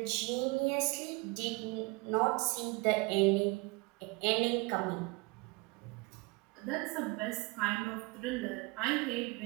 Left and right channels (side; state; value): left; quieter; 26.4 dB